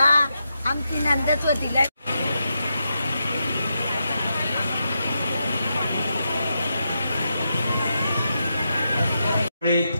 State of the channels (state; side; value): inverted; both; correlation -0.85